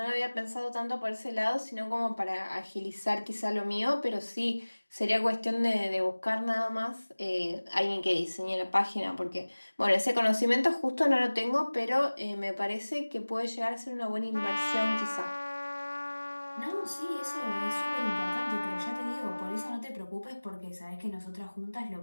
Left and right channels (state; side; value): inverted; both; correlation -1.00